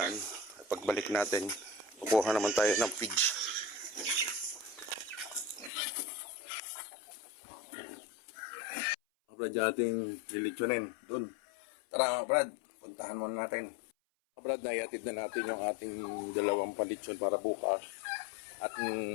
Pagbalik natin, kukuha naman tayo ng feeds. Kabrad, ating lilitsunin doon. Tara mga kabrad, puntahan muna natin. Kabrad, naiatid na natin yung ating dalawang palitsyon para bukas. At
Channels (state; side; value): drops out; right; at 5.7 s